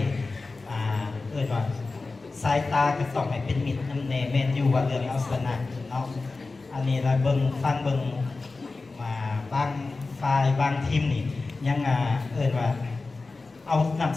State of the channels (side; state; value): right; quieter; 3.7 dB